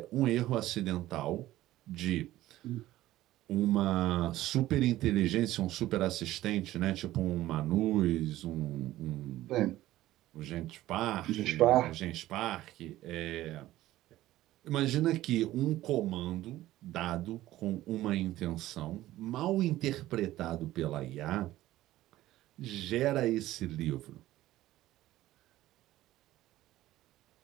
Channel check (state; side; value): quieter; left; 15.4 dB